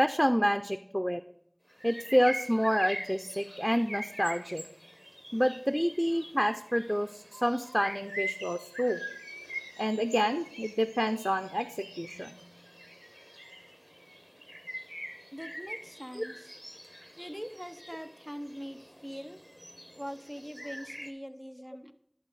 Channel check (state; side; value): identical; both; correlation 1.00